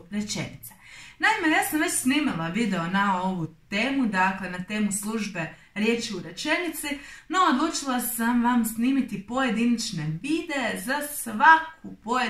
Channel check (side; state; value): both; identical; correlation 1.00